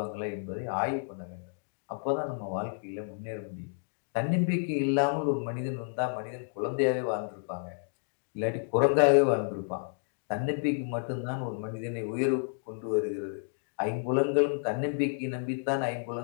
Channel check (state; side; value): silent; right; digital silence